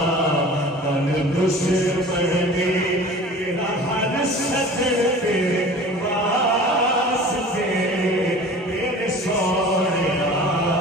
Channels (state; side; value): normal; both; correlation 0.42